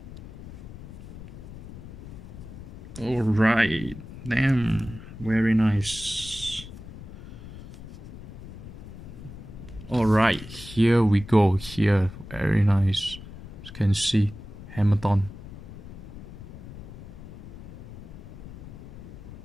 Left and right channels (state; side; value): noise; left; rumble, 13 dB below the sound